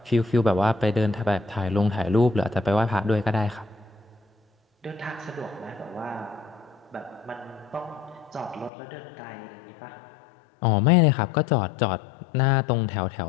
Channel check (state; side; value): drops out; right; at 8.7 s